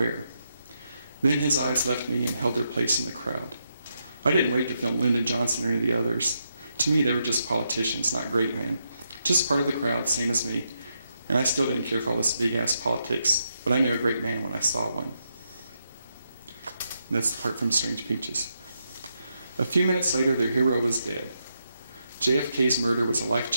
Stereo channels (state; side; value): inverted; both; correlation -0.82